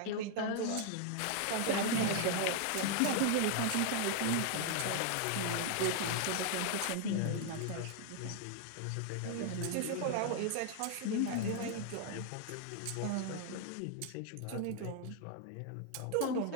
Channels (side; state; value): both; different; correlation 0.00